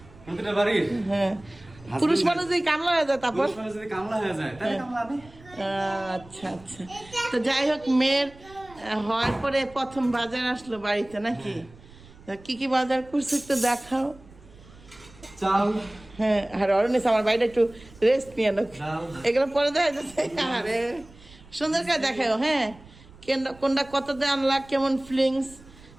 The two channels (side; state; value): right; noise; rumble, 22 dB below the sound